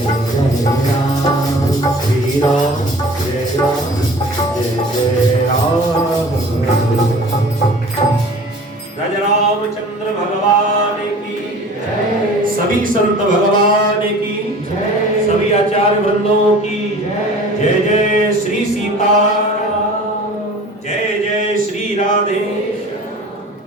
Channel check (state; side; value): normal; both; correlation 0.44